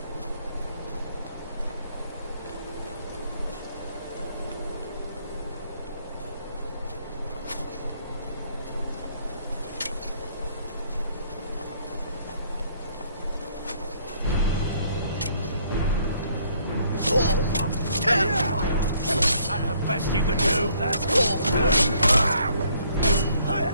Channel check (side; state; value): both; inverted; correlation -0.65